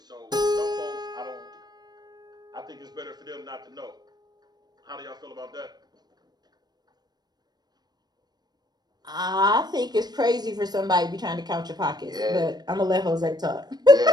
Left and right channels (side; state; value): left; late; 0.19 ms